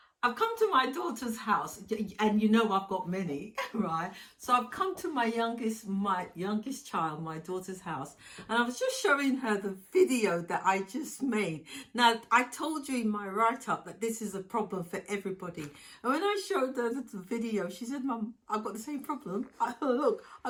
I've come to my daughter's house, and you know I've got many, right? So I've come to my youngest child, my daughter's house, and I was just showing her the video that I just made. Now, I told you in my write-up that this is a problem for everybody. And when I showed her the video, she said, "Mum, I've got the same problem. Look,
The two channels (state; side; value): identical; both; correlation 1.00